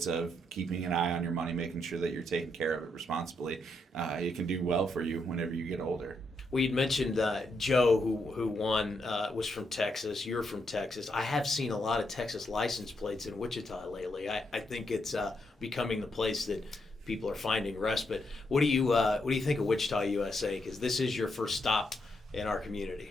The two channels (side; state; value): both; normal; correlation 0.79